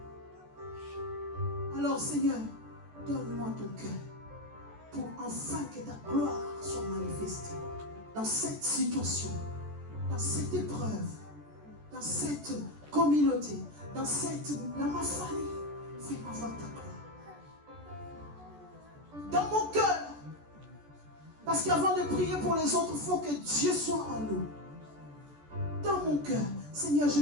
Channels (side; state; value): left; late; 14 ms